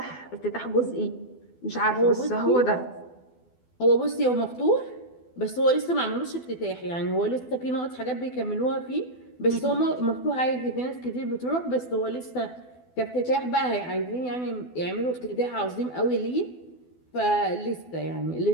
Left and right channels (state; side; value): late; right; 12 ms